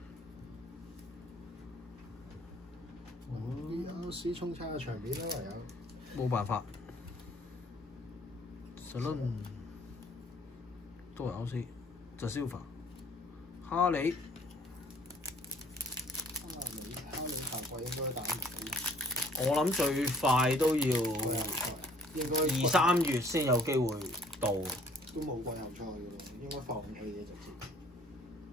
啲衝差嘅場面啦，唯有。冇辦法 ，Salon 都係 OC， 就 Silver， 哈利下季應該打唔到。我諗最快都要應該2-3月先有機會到。都冇季後賽嘅咯，應該放棄嘅直接。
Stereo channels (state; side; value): normal; both; correlation 0.57